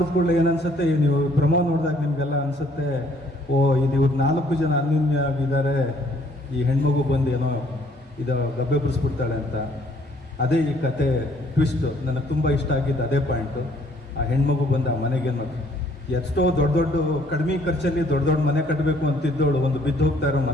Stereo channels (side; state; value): both; normal; correlation 0.62